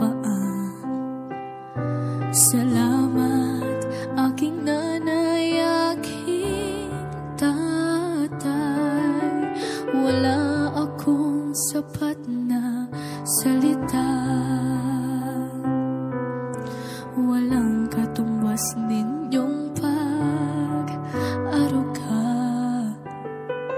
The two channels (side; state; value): both; identical; correlation 1.00